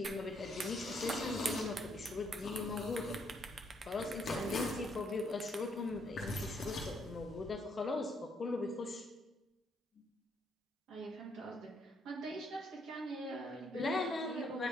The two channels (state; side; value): normal; both; correlation 0.71